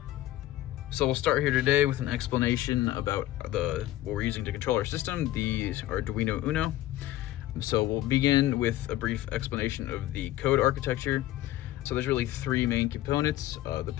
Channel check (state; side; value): quieter; right; 14.8 dB